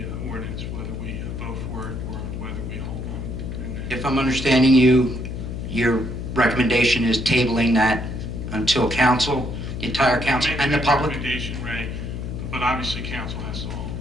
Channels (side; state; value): left; noise; hum, 6 dB below the sound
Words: ordinance, whether we vote for it or whether we hold on. If I'm understanding you, your recommendation is tabling that until council, the entire council, and the public? Recommendation, Ray, but obviously council has to hold.